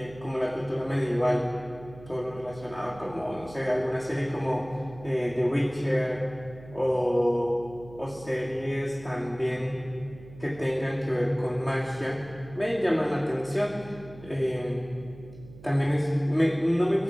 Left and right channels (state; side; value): noise; right; hum, 18 dB below the sound